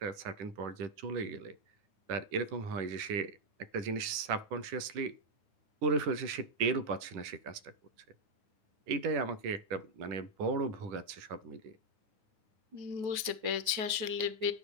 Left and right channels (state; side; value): late; left; 9.3 ms